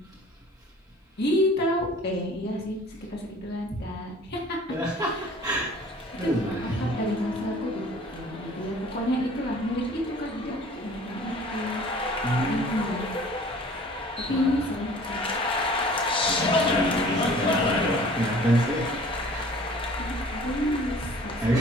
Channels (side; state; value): both; normal; correlation 0.49